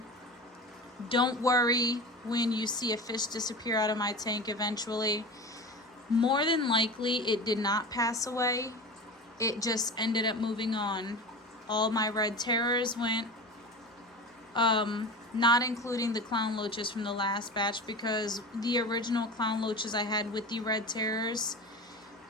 don't worry when you see a fish disappear out of my tank eventually. More than likely, it did not pass away. It just ended up moving on. All my red terrors went, not including the Clown Loaches from the last batch, because the original Clown Loaches I had with the red terrors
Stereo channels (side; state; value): both; normal; correlation 0.31